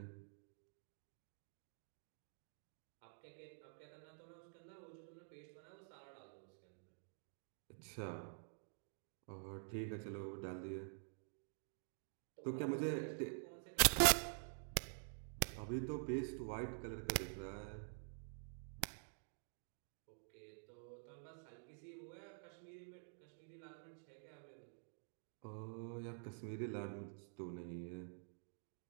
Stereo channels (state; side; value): silent; left; digital silence